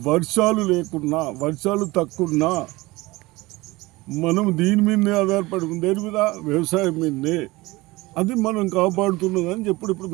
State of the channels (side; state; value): left; quieter; 21.1 dB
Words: వర్షాలు లేకున్నా, వర్షాలు తక్కువన్నా మనం దీని మీదనే ఆధారపడి ఉంది. దేని మీద? వ్యవసాయం మీదనే. అది మనం కాపాడుతున్నదని ఇప్పుడు